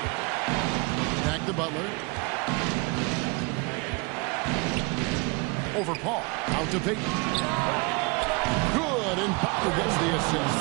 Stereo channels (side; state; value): left; quieter; 28.2 dB